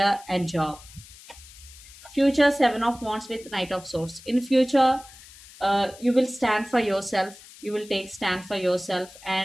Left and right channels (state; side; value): noise; left; hiss, 20 dB below the sound